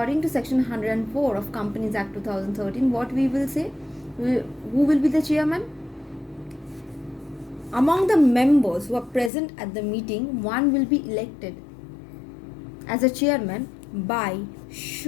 of Companies Act 2013, what we will say? Who will be the chairman? Among the members who are present at the meeting, one will be elected as a chairman by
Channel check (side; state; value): right; drops out; at 9.3 s